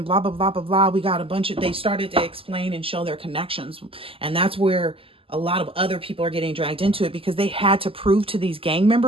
blah, blah, blah, blah, blah. We got a bunch of, they started to explain and show their connections. And that's where a lot of other people are getting dragged into it because they had to prove to these gang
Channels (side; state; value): left; late; 0.26 ms